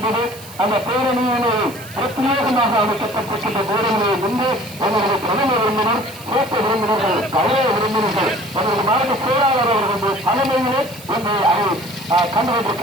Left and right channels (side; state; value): right; noise; hiss, 18 dB below the sound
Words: அந்த பேரணியினை பிரத்யேகமாக அமைக்கப்பட்டிருக்கின்ற பேரணியை முன்பு எங்களது பிரதம விருந்தினர், சிறப்பு விருந்தினர்கள், கலைய விருந்தினர்கள், எங்களது மாநில செயலாளர் அவர்களது தலைமையிலே இன்று அதை